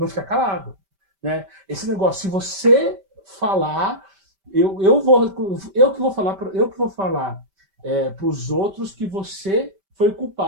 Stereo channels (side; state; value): left; late; 5.1 ms